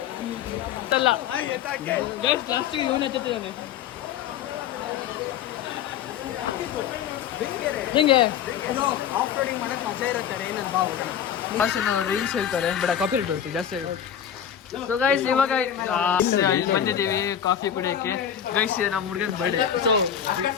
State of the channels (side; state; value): right; quieter; 9.2 dB